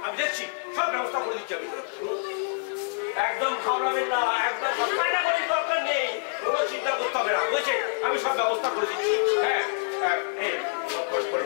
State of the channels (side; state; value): right; silent; digital silence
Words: আমি দেখছি, সব ব্যবস্থা করে দিচ্ছি আমি। একদম ঘাবড়াবেন না, একদম কান্নাকাটির দরকার নেই, কোনো চিন্তা করতে হবে না, বুঝেছেন? আমি সব ব্যবস্থা করে দিচ্ছি। হ্যাঁ